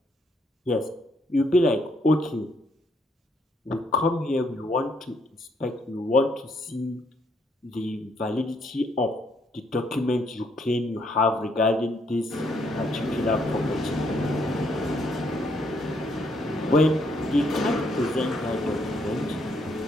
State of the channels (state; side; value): normal; both; correlation 0.71